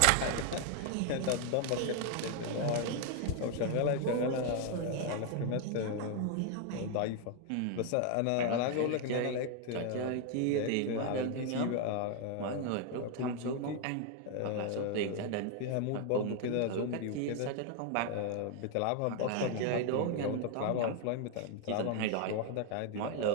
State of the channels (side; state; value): both; different; correlation 0.00